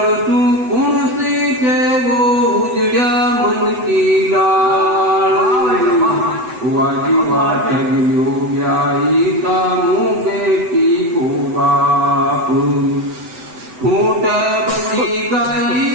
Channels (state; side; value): late; left; 8.0 ms